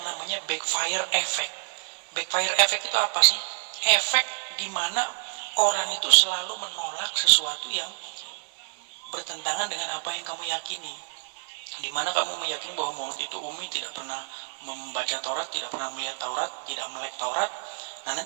namanya backfire effect. Backfire effect itu apa sih? Efek dimana orang itu selalu menolak sesuatu yang bertentangan dengan apa yang kamu yakini. Dimana kamu meyakini bahwa Muhammad itu ummi, tidak pernah membaca Taurat, tidak pernah melihat Taurat, tidak melek Taurat. Nah,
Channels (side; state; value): left; silent; digital silence